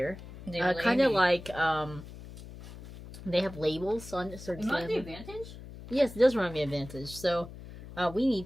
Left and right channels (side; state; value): left; noise; hum, 14 dB below the sound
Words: kind of like they have labels on certain. Not the advantage? Yes, it does remind me of Advantage. So we need